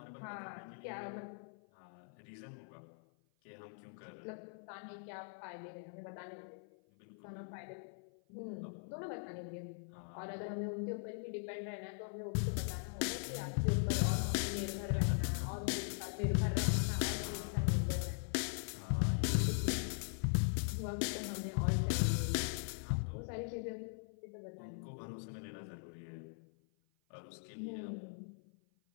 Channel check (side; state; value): right; silent; 50 dB below the other